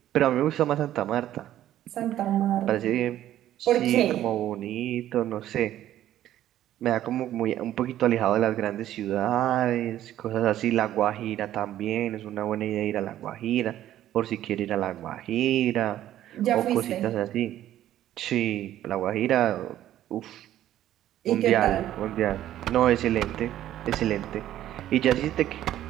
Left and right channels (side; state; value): left; quieter; 12.6 dB